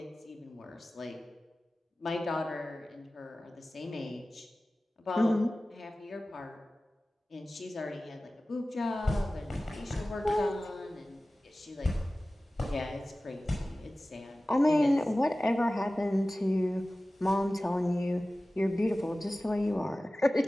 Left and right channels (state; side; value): normal; both; correlation 0.97